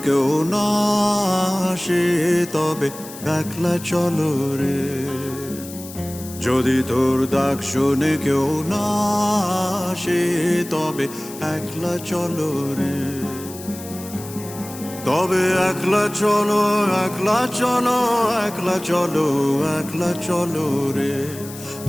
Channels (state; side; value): noise; left; hiss, 15 dB below the sound